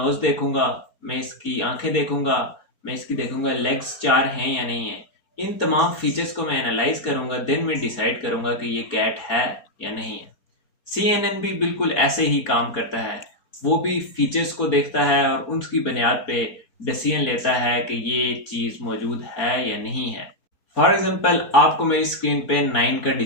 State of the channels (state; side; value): late; right; 4.4 ms